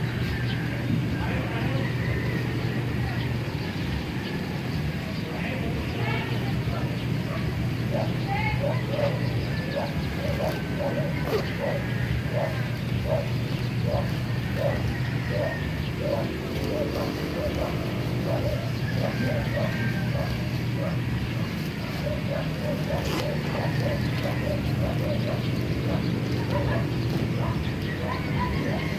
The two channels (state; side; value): identical; both; correlation 1.00